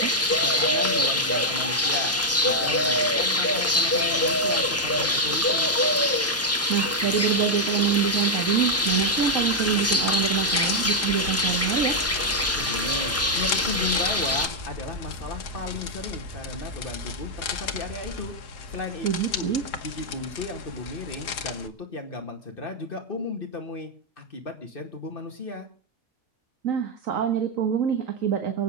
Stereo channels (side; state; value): both; normal; correlation -0.02